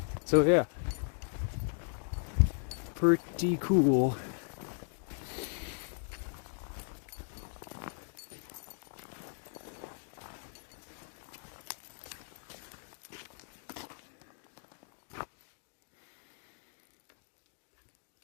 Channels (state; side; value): silent; right; digital silence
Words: So yeah. Pretty cool.